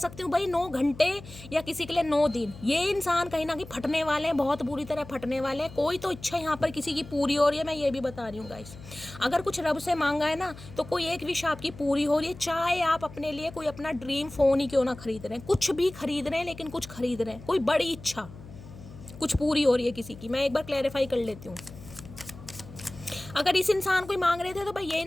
हूँ भाई 9 घंटे या किसी के लिए 9 दिन। ये इंसान कहीं ना कहीं फटने वाले हैं, बहुत बुरी तरह फटने वाले हैं। कोई तो इच्छा यहाँ पर किसी की पूरी हो रही है, मैं ये भी बता रही हूँ गाइस। अगर कुछ रब से मांगा है ना तो कोई एक विश आपकी पूरी हो रही है। चाहे आप अपने लिए कोई अपना ड्रीम फोन ही क्यों ना खरीद रहे हैं, कुछ भी खरीद रहे हैं, लेकिन कुछ खरीद रहे हैं, कोई बड़ी इच्छा कुछ पूरी हो रही है किसी की। मैं एक बार क्लैरिफाई कर लेती हूँ। अगर इस इंसान को ही मांग रहे थे तो भाई ये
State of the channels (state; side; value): noise; left; hum, 17 dB below the sound